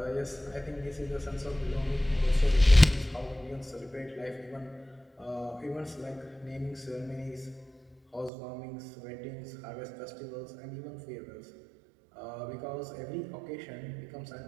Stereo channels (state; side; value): drops out; left; at 8.3 s